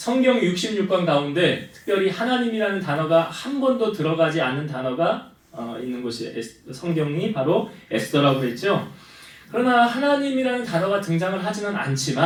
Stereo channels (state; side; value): identical; both; correlation 1.00